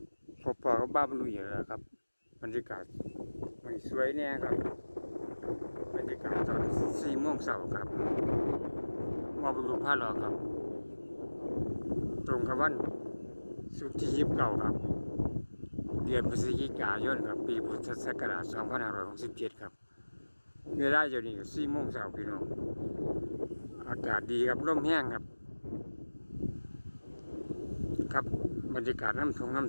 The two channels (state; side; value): inverted; both; correlation -1.00